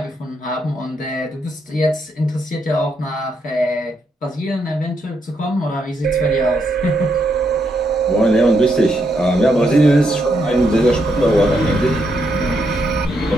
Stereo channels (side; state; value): both; normal; correlation 0.79